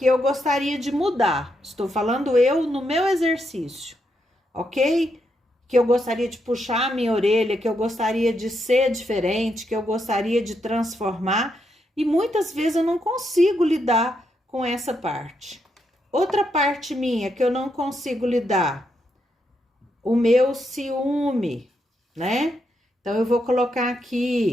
eu gostaria de mudar. Estou falando eu no meu exercício, ok? Que eu gostaria de puxar a minha orelha, que eu gostaria de ser diferente, que eu gostaria de transformar, e muitas vezes eu não consigo lidar com essa parte. Outra parte minha que eu não consigo lidar, o meu ciúme, né? Então, eu vou colocar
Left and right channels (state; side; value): normal; both; correlation 0.80